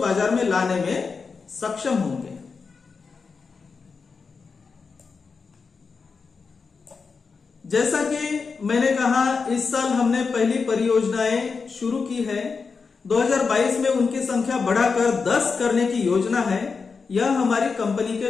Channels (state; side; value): quieter; right; 5.0 dB